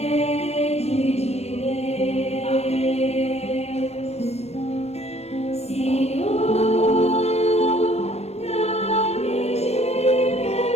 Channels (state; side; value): late; right; 0.31 ms